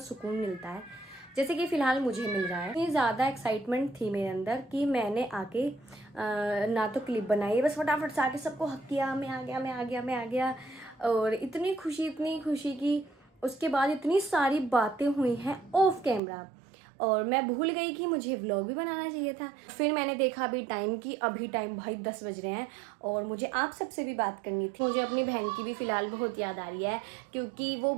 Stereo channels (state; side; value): drops out; left; at 16.2 s